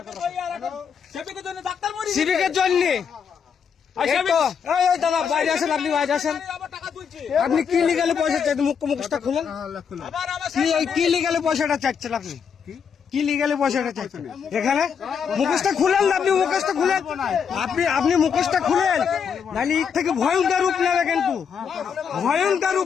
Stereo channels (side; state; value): right; quieter; 6.9 dB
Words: সিভিকের জন্য দাদা বাইরে আসেন, আপনি বাইরে আসেন। আপনি কি লিগালে পয়সা চাইছেন? মুখটা খুলেন। কি লিগালে পয়সাটা চাচ্ছেন? আপনি কি লিগালে পয়সাটা চাইছেন? এখানে মুখোশটা খুলেন না, আপনি মুখোশটা খুলেন, আপনি মুখোশটা খুলেন, নাহলে এর থেকে ভয়ঙ্কর রূপ নেবে, কিন্তু ভয়ঙ্কর